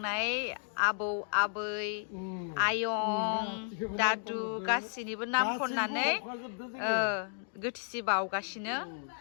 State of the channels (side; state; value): right; silent; 56 dB below the other